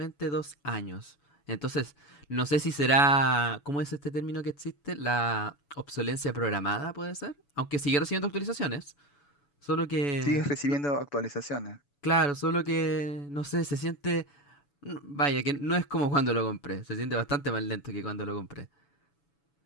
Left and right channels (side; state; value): right; late; 7.0 ms